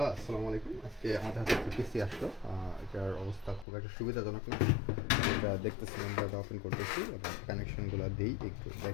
আসসালামু আলাইকুম। আজকে আমাদের হাতে একটা পিসি আসলো। এটার অবস্থা খুব একটা সুবিধাজনক না। এটা দেখতেছিলাম, এটা ওপেন করতেছি এবং কানেকশনগুলো দিই, একটু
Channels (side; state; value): right; drops out; at 3.7 s